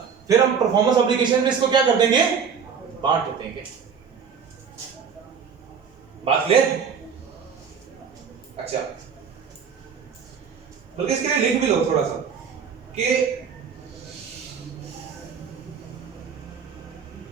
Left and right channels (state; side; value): quieter; left; 6.6 dB